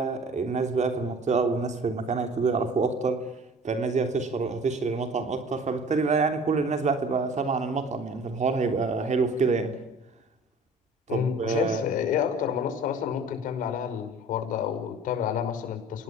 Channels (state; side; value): normal; both; correlation 0.46